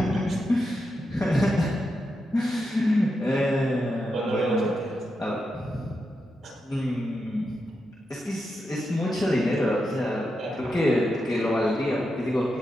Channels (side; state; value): both; normal; correlation 0.87